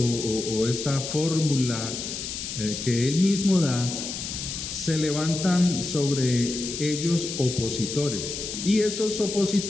o esta fórmula que él mismo da, se levantan sobre ellos opositores, y esos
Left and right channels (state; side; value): noise; left; hiss, 6 dB below the sound